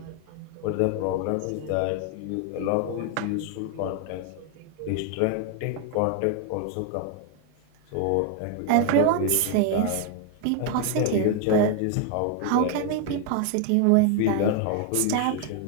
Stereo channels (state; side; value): different; both; correlation 0.00